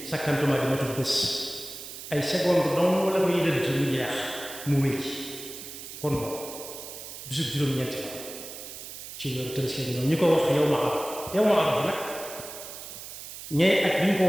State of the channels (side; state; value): right; noise; hiss, 11 dB below the sound